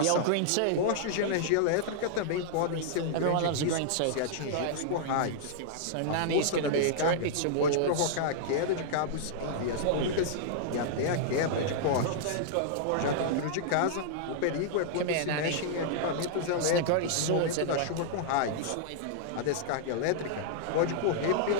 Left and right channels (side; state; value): both; different; correlation -0.01